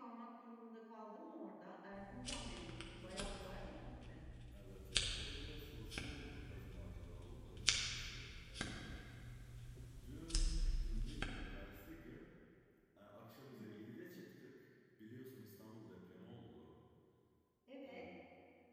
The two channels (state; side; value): identical; both; correlation 1.00